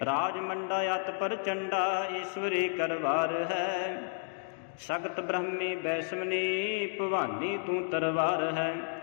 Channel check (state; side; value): silent; right; digital silence